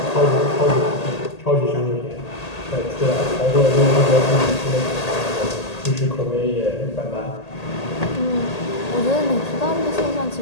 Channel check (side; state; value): right; late; 1.8 ms